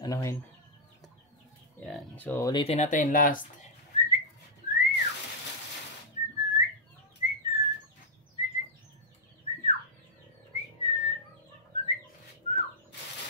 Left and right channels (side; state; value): both; normal; correlation -0.07